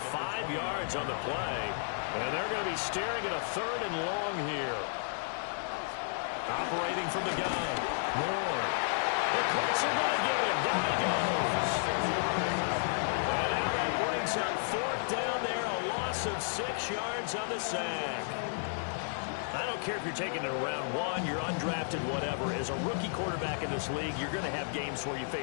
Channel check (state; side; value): silent; right; digital silence